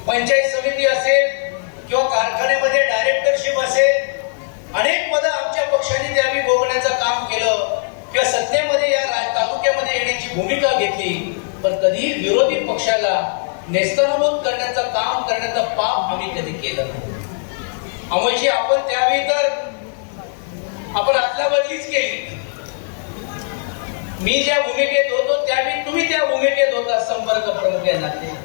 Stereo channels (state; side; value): silent; right; digital silence